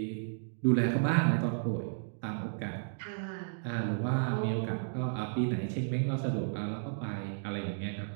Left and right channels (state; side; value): silent; left; digital silence